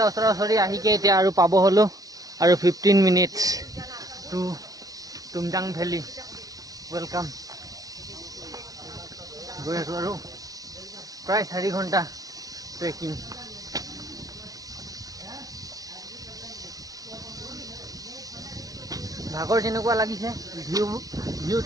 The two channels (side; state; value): left; late; 0.18 ms